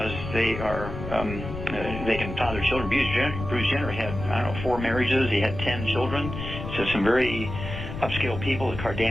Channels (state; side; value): noise; left; rumble, 8 dB below the sound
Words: they are, they can father children. Bruce Jenner had, I don't know, 4 marriages. He had 10 children. So some very upscale people, the